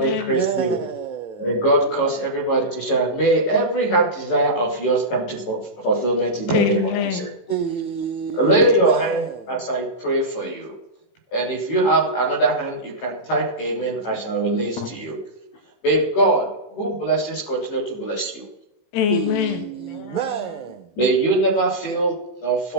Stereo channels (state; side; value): late; right; 18 ms